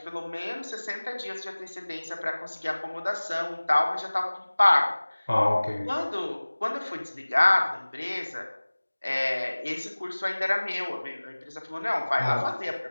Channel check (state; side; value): inverted; both; correlation -1.00